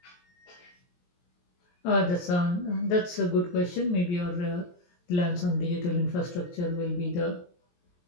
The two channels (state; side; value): late; right; 23 ms